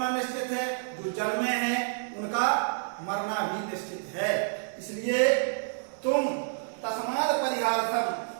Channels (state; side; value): silent; left; digital silence